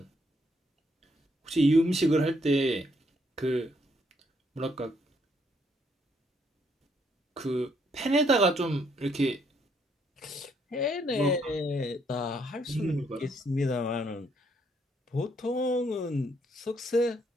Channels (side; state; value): both; normal; correlation 0.71